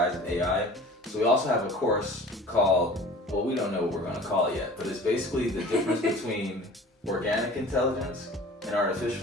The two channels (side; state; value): both; normal; correlation 0.43